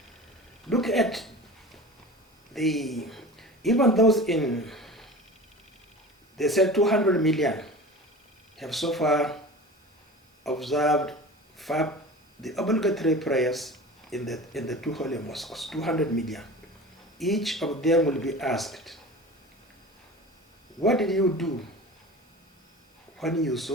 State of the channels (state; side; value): normal; both; correlation 0.36